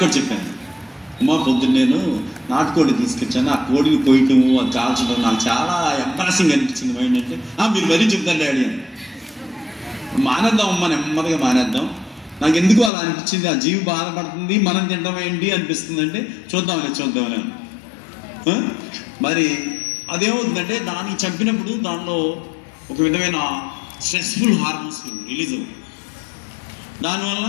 కూడా చెప్పాను, అమ్మ పొద్దున్న నేను నాటుకోడి తీసుకొచ్చాను, ఆ కోడిని కొయ్యటము, అది కాల్చడం నాకు చాలా ఎంబారసింగ్ అనిపించింది. మైండ్ అంటే మీరు మరీ చెప్తాను డాడీ అని. మానేద్దాం అమ్మ, నెమ్మదిగా మానేద్దాం. నాకు ఎందుకు అలా అనిపించింది, ఆ జీవి బాధపడుతుంది మనం తినడం ఏంటి అనిపిస్తుంది అంటే చూద్దామని. మరి అదేమవుతుందంటే దాన్ని చంపినప్పుడు దానిలో ఒక విధమైన స్ట్రెస్ఫుల్ హార్మోన్స్ రిలీజ్ అవుతాయి. దానివల్ల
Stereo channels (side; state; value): right; drops out; at 12.9 s